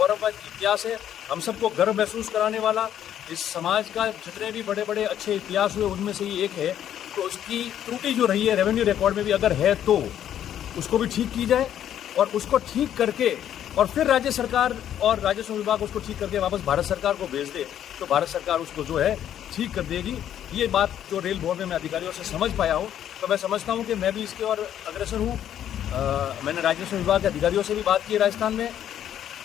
इतिहास है, हम सबको गर्व महसूस कराने वाला। इस समाज का जितने भी बड़े बड़े अच्छे इतिहास हुए उनमें से ये एक है। तो उसकी त्रुटि जो रही है रेवेन्यू रिकॉर्ड में भी अगर है तो उसको भी ठीक की जाए, और उसको ठीक करके और फिर राज्य सरकार और राजस्व विभाग उसको ठीक करके वापस भारत सरकार को भेज दे, तो भारत सरकार उसको जो है ठीक कर देगी। ये बात जो रेल बोर्ड में मैं अधिकारियों से समझ पाया हूँ, तो मैं समझता हूँ कि मैं भी इसके और अग्रसर हूँ। मैंने राजस्व विभाग के अधिकारियों से भी बात की राजस्थान में,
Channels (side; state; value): right; quieter; 10.5 dB